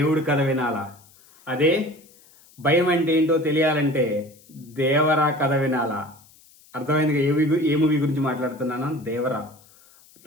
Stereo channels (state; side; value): noise; left; hiss, 27 dB below the sound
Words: కథ వినాలా, అదే భయం అంటే ఏంటో తెలియాలంటే దేవరా కథ వినాలా. అర్థమైందిగా ఏ మూవీ గురించి మాట్లాడుతున్నాను? దేవరా.